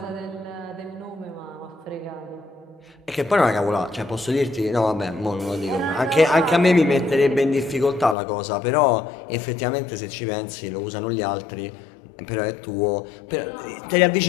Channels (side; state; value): right; drops out; at 8.2 s